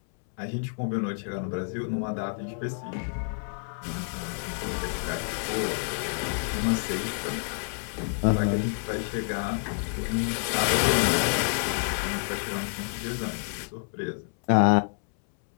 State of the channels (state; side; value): silent; right; 59 dB below the other